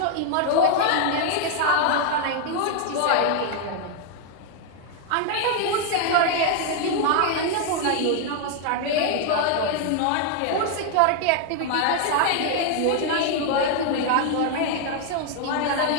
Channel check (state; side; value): different; both; correlation 0.00